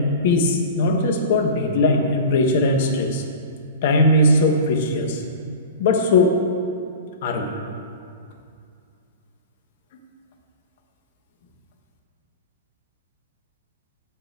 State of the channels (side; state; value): both; inverted; correlation -0.34